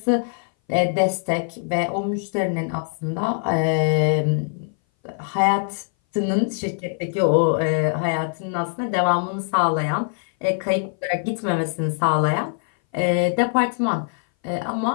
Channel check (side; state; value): right; silent; 59 dB below the other